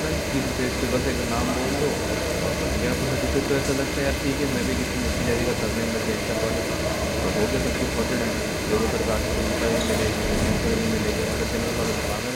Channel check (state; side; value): identical; both; correlation 1.00